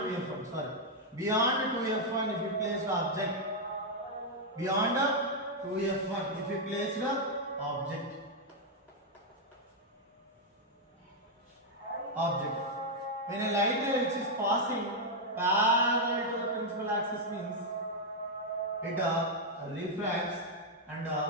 2f1. Beyond 2f1 if you place the object. Beyond 2f1 if you place the object. When a light ray which is passing parallel to the principal axis means it refracts and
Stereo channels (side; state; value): both; normal; correlation -0.02